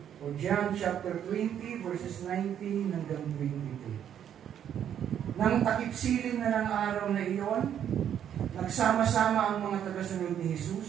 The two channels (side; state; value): left; quieter; 9.5 dB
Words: O John chapter 20, verses 19 hanggang 22. Nang takip-silim na ng araw na iyon, nagsama-sama ang mga tagasunod ni